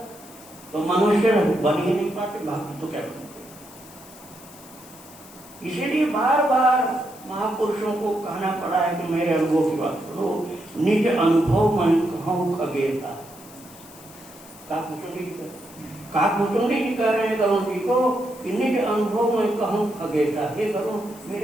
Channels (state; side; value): noise; left; hiss, 20 dB below the sound